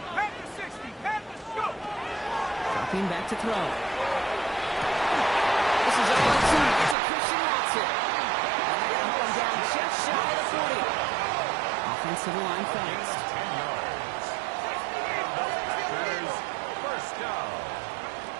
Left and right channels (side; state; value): left; drops out; at 7.0 s